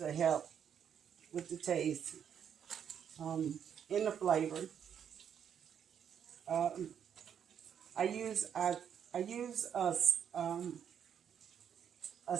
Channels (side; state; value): left; quieter; 8.4 dB